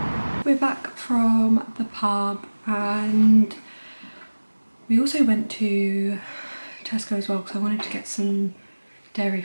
We're back from the pub and we also went to Tesco as well because I wanted to get some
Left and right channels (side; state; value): both; inverted; correlation -1.00